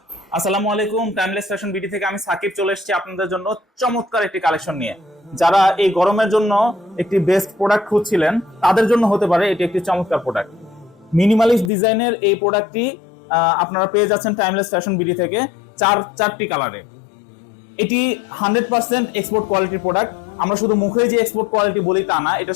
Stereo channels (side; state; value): right; drops out; at 11.7 s